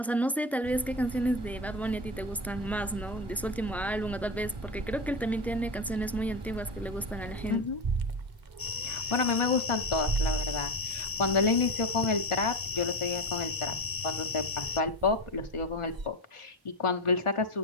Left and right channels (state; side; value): normal; both; correlation 0.18